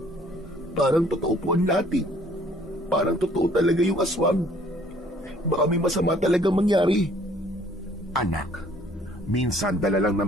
Parang totoo po ang lahat. Parang totoo talaga yung aswang. Baka may masama talaga mangyari." "Anak, minsan dala lang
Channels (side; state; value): both; normal; correlation 0.59